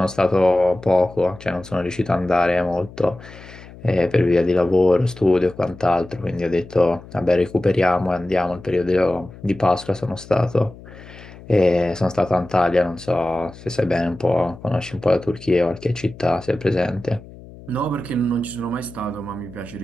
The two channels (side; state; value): left; noise; hum, 18 dB below the sound